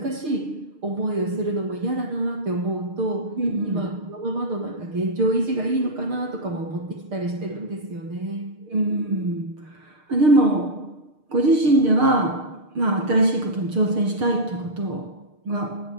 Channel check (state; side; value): late; left; 6.6 ms